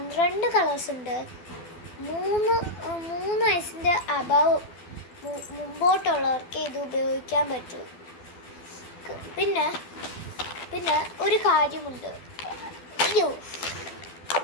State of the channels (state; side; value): late; right; 12 ms